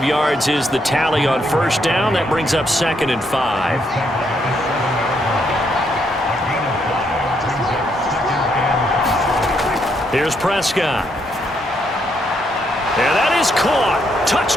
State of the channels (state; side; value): normal; both; correlation 0.75